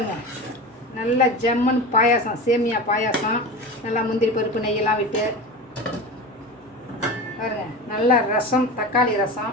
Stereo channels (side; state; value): both; normal; correlation 0.28